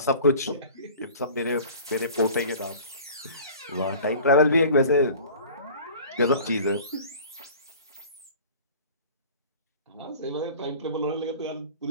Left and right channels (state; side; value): inverted; both; correlation -0.43